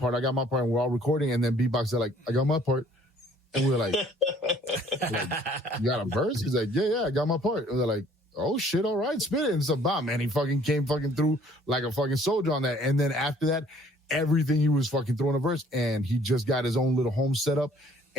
we're all recording. And then Beatbox said like, I got my part. And we're like, you got a verse? He's like, yeah, I got my part. And they're like, oh shit, all right, spit it. And so, man, he fucking came fucking through like a fucking soldier on that. And then after that, everything he was fucking throwing a verse, and he just got his own little home set up.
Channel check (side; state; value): both; normal; correlation 0.57